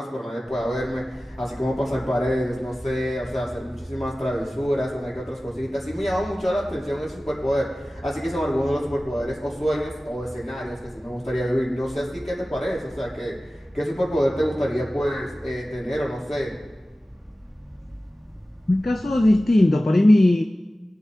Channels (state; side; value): normal; both; correlation 0.96